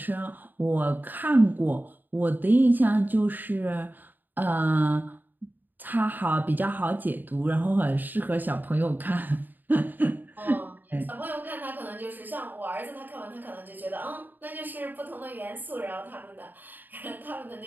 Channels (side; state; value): left; late; 0.089 ms